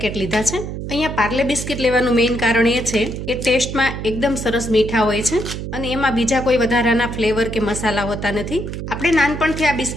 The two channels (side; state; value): right; noise; hum, 6 dB below the sound